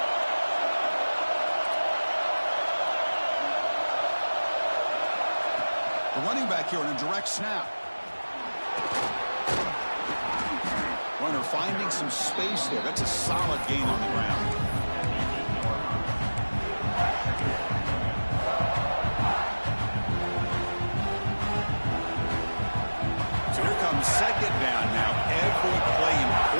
The running back here in a direct snap. Runner finding some space there. That's a solid gain on the ground. So here comes 2nd down now. Every play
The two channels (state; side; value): inverted; both; correlation -1.00